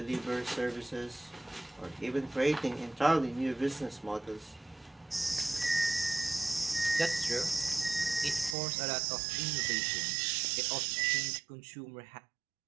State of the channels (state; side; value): drops out; left; at 8.6 s